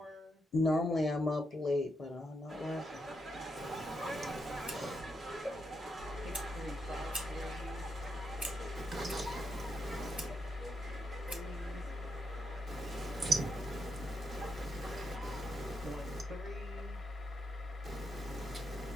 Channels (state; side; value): normal; both; correlation 0.81